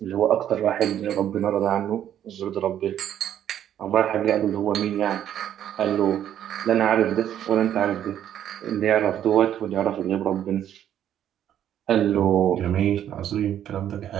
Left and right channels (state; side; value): quieter; left; 10.6 dB